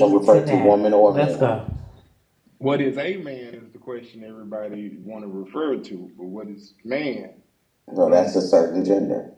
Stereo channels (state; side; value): identical; both; correlation 1.00